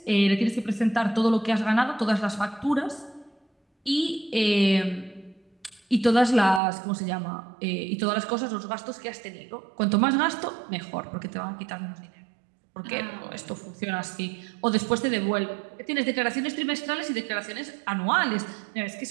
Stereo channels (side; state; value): left; drops out; at 6.6 s